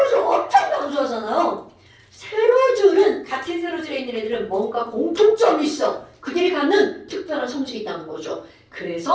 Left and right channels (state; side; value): identical; both; correlation 1.00